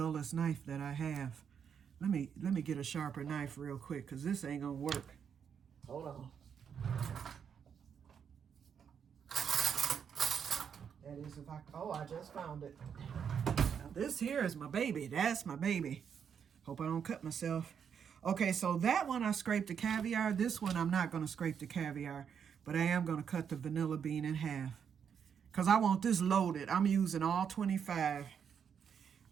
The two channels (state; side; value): quieter; left; 7.5 dB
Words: knife that I have. Let me get a sharper knife real quick because this ain't gonna work. Hold on. That is if I just found it. Now this here is my baby. That's my baby. Hope I don't cut myself. Okay, so that one I scraped the caviar. This one I'm not gonna scrape the caviar, but I am gonna cut the vanilla bean in half. Because I want this loaded. I'm using all 25.